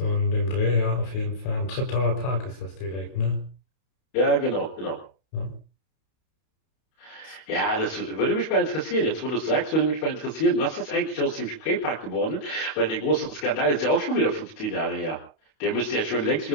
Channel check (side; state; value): right; late; 32 ms